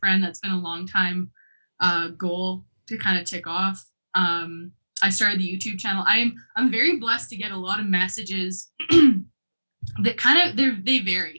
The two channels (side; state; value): both; inverted; correlation -1.00